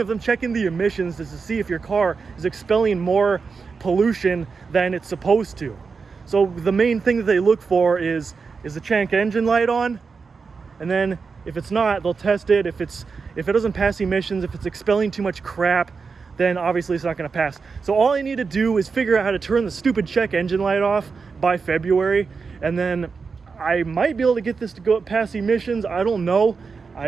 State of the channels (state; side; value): quieter; left; 5.0 dB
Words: them checking the emissions is to see if your car is expelling more pollution than it's supposed to. So the main thing that they look for is the check engine light on, and then if it's not, they'll test it. If it doesn't pass emissions, if it's expelling too much crap, then obviously it's not going to pass. So all I need to do is figure out how to turn the stupid check engine light off by February, and then I might be able to get this to go past emissions. I don't know.